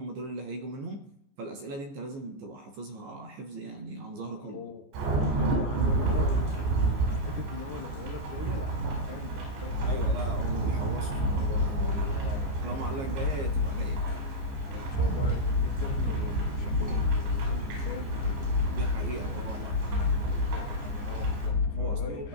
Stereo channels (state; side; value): late; left; 14 ms